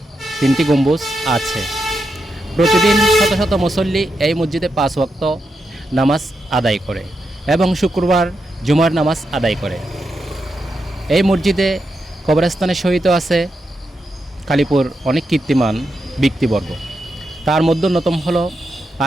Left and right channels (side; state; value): both; normal; correlation 0.85